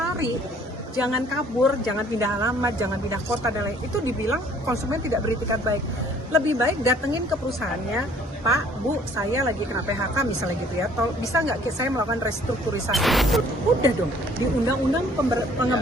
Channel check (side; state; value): both; normal; correlation 0.58